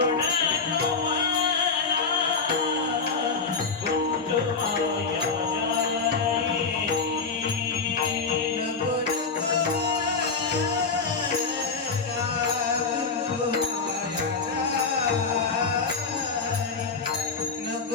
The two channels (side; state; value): right; quieter; 4.8 dB